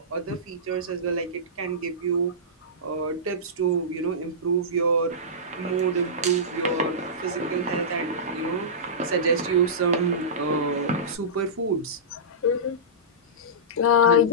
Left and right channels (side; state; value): both; normal; correlation -0.19